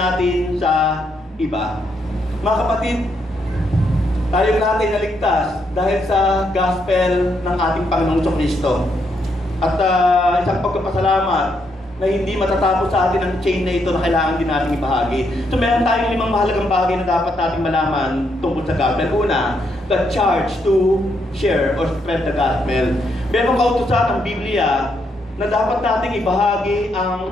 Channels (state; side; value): normal; both; correlation 0.77